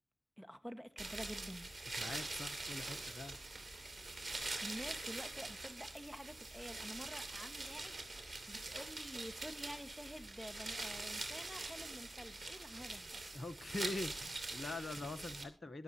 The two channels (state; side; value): normal; both; correlation 0.92